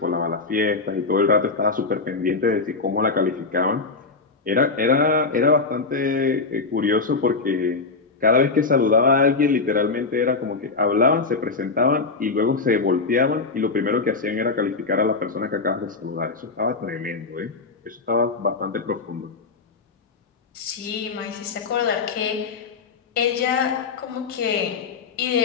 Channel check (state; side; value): quieter; right; 4.2 dB